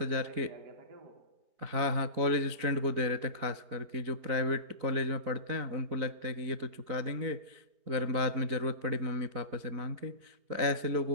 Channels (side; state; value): left; late; 4.0 ms